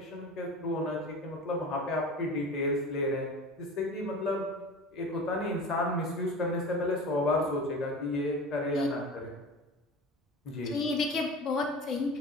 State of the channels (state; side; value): normal; both; correlation 0.35